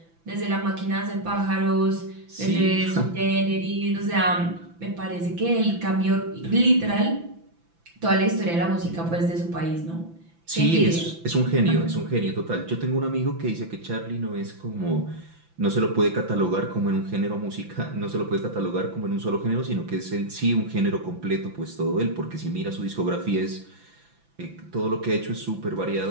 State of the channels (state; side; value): late; left; 5.9 ms